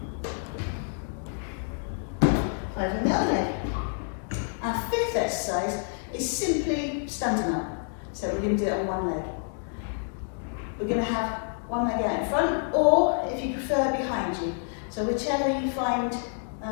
Standing up. So we're going to do it on one leg. We're going to have one leg out in front, or if you prefer, behind you. So whichever you find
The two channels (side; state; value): right; silent; 59 dB below the other